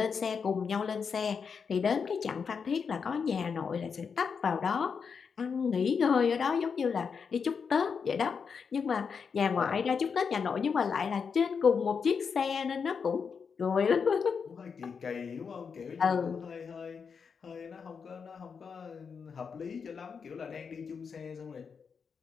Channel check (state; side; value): quieter; right; 6.0 dB